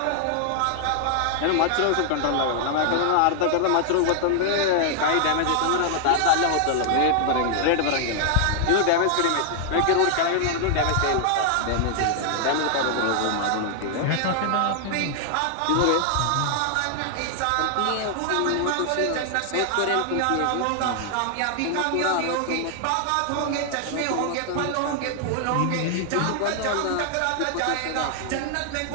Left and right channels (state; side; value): different; both; correlation 0.00